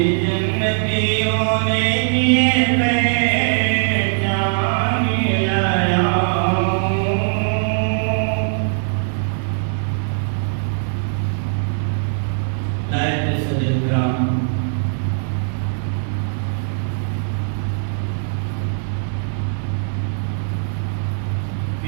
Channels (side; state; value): left; silent; digital silence